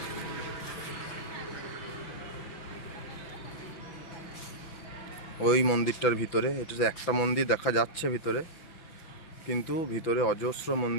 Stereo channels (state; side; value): late; right; 6.0 ms